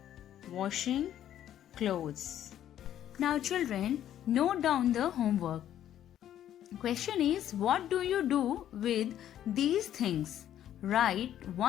Washing clothes. Now children, note down the homework. Question is, what do you do with these things? Write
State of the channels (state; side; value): quieter; right; 11.2 dB